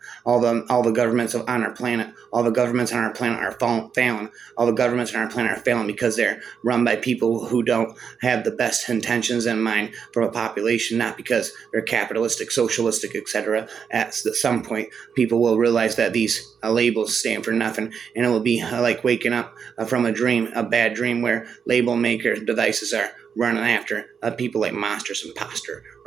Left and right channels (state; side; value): quieter; left; 6.8 dB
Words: All the governments on our planet, all the governments on our planet are failing. All the governments on our planet are failing because they're run by people who don't have the best intentions in mind for a population, not because they're capitalistic, socialistic, etc. At some point, people will realize that these labels stand for nothing, and it will be like waking up from a dream, a bad dream, where label maker devices are running after people like monsters, imposter,